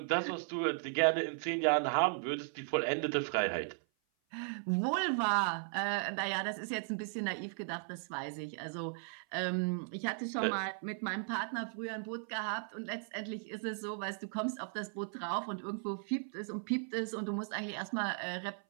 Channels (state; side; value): silent; left; 53 dB below the other